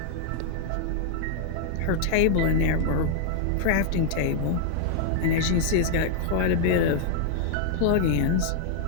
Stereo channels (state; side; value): different; both; correlation 0.00